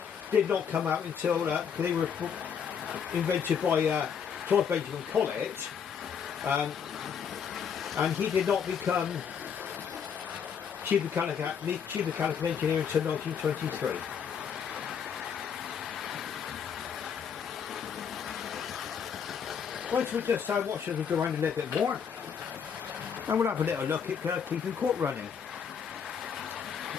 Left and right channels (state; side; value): quieter; right; 7.2 dB